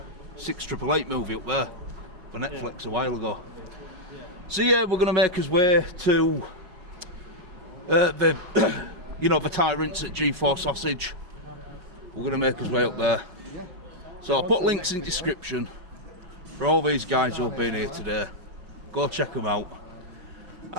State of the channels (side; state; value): left; late; 5.4 ms